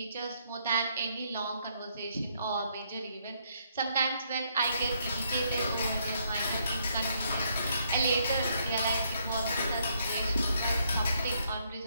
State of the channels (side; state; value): both; inverted; correlation -0.72